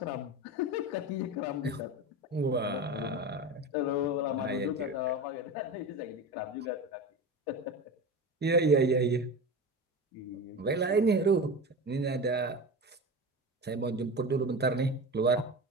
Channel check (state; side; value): normal; both; correlation 0.26